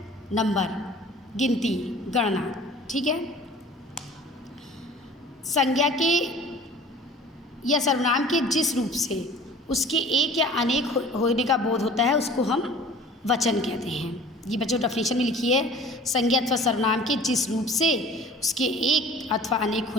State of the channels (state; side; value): normal; both; correlation 0.46